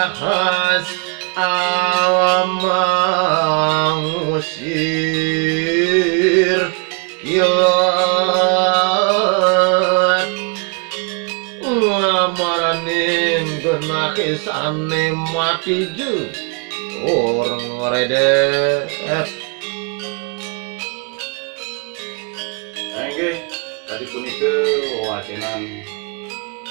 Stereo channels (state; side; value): quieter; left; 35.1 dB